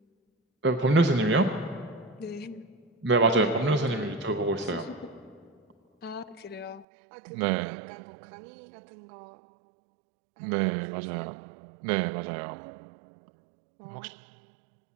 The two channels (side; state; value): left; drops out; at 6.9 s